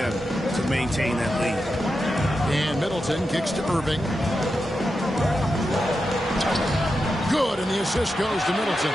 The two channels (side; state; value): both; normal; correlation 0.89